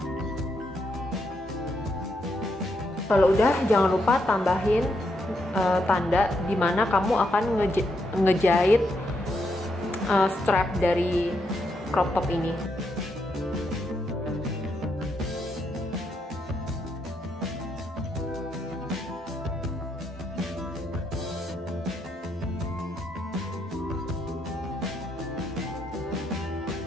Kalau udah, jangan lupa tambahin tanda dimana kamu akan ngejahit strap dari crop top ini.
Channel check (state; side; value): normal; both; correlation 0.79